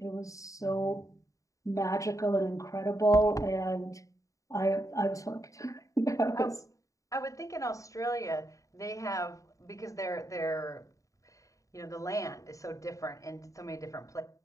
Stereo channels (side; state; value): right; late; 0.16 ms